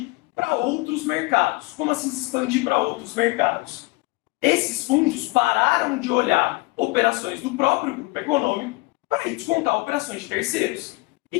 para outros mercados. Como assim se expandir para outros mercados? esses fundos pararam de olhar operações do próprio grupo econômico para ir descontar operações de terceiros.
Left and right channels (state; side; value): quieter; right; 23.5 dB